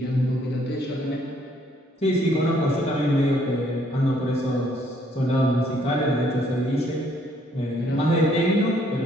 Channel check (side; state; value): both; normal; correlation 0.66